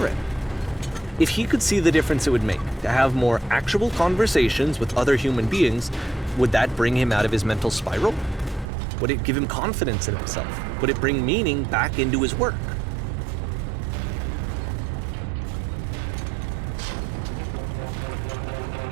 him? If he could see the difference it would make to have more actual conversations with other human beings, would that bring him out of his mental spiral? Would it give him confidence in himself? Would it bring meaning back into his work?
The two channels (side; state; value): left; drops out; at 8.7 s